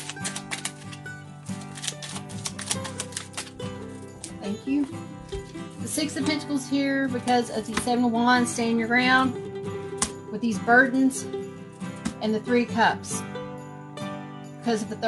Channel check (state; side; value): identical; both; correlation 1.00